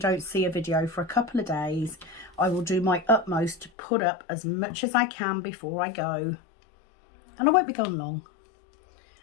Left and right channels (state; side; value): drops out; right; at 3.7 s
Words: see a video for a couple of days. I will do my utmost to put up as much as I can before I go. And I won't be gone long.